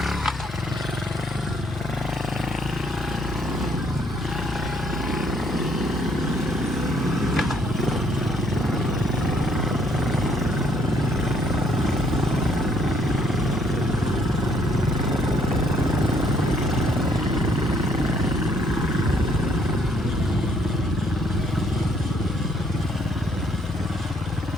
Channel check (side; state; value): both; normal; correlation 0.67